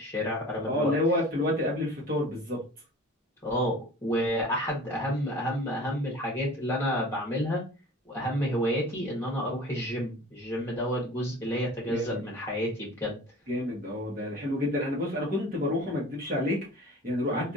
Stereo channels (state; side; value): normal; both; correlation 0.42